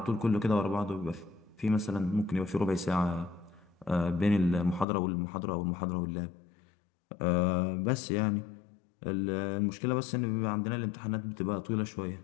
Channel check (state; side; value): drops out; right; at 4.9 s